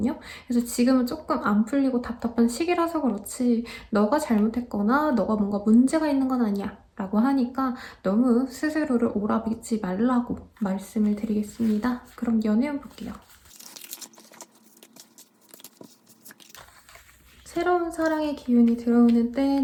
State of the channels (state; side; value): identical; both; correlation 1.00